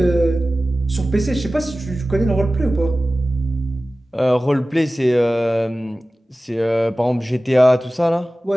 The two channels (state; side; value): normal; both; correlation 0.96